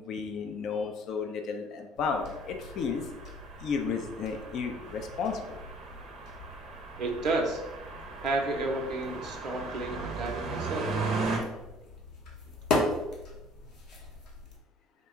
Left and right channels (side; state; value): both; normal; correlation 0.55